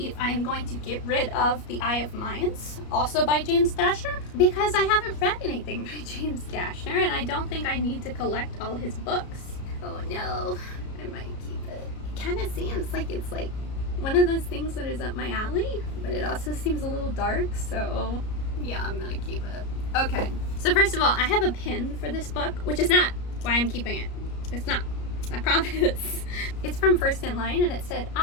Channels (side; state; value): right; late; 33 ms